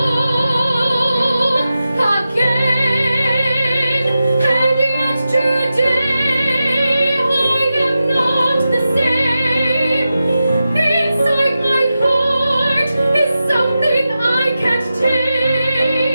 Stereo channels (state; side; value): inverted; both; correlation -0.91